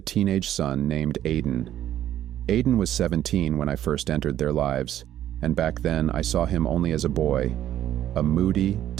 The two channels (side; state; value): left; quieter; 11.8 dB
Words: teenage son named Aiden. Aiden was 17 when I first entered their lives, and back then I saw him only as a boy, a moody,